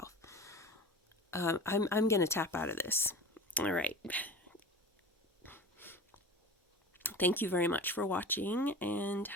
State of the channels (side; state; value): both; normal; correlation 0.34